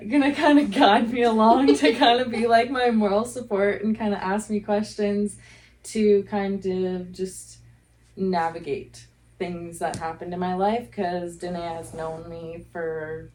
guide me along to kind of be like my moral support and kind of ask me questions to kind of just navigate things that happened in my life, because Danae has known me for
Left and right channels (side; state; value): both; identical; correlation 1.00